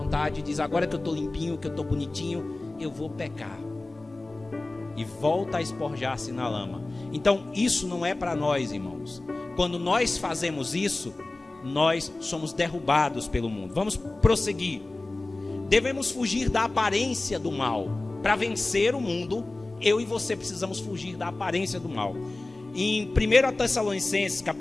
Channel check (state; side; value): quieter; right; 3.0 dB